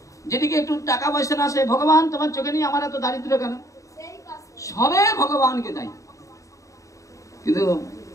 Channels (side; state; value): right; late; 0.16 ms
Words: যেদিকে একটু টাকা পয়সা না আসে, ভগবান তোমার চোখে নিয়ে আমার এত দারিদ্র কেন? সবে ভগবানকে দেয়। কিন্তু